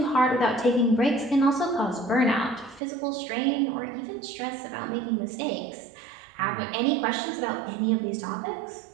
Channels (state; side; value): drops out; left; at 2.8 s